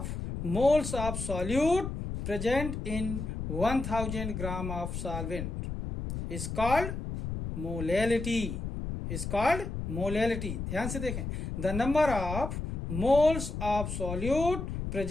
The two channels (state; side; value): noise; left; rumble, 5 dB below the sound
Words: moles of solute present in 1000 gram of solvent is called molality. ध्यान से देखें, the number of moles of solute